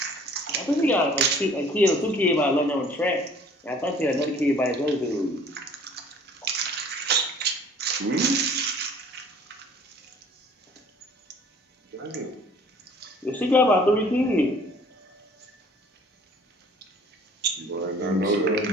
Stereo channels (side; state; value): both; normal; correlation 0.53